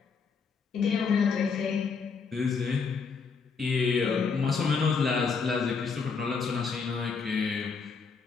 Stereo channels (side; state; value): right; quieter; 5.3 dB